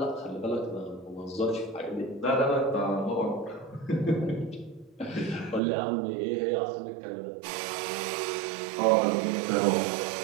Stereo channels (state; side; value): drops out; left; at 5.6 s